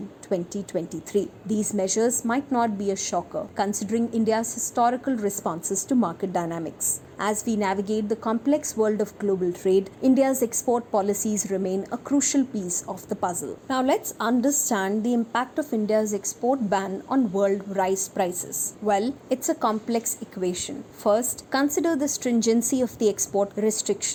2023. These measures might not be a shocker, considering India's historical responses to market dynamics. As we navigate the complex world of global trade, India's export policies remain a crucial piece of the puzzle. Now let's understand the impact of India's export ban on world rice prices. Well, it's a complex equation. First, consider the stringency of the export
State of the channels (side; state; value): both; identical; correlation 1.00